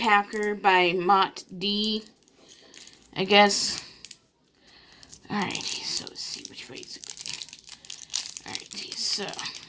by Mott D, I guess. Alright, so let's see which way is it. Alright, so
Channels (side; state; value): both; identical; correlation 1.00